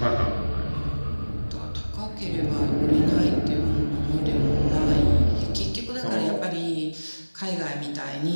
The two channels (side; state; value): both; inverted; correlation -1.00